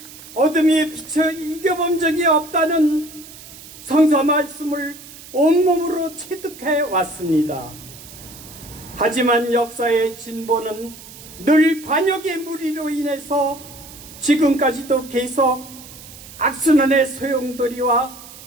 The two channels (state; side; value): noise; right; hiss, 17 dB below the sound